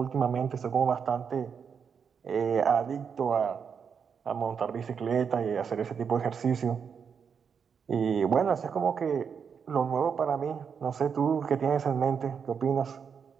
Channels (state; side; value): quieter; left; 6.7 dB